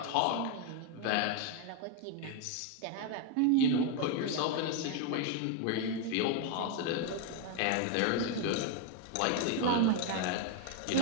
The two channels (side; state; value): both; different; correlation 0.01